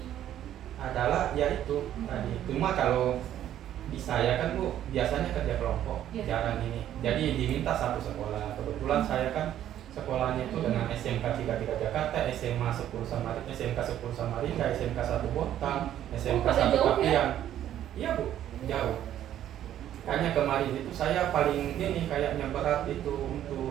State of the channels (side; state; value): left; quieter; 11.5 dB